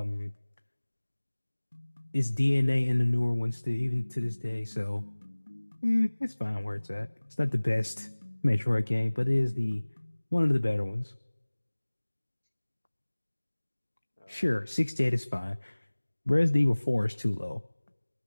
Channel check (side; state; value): both; inverted; correlation -1.00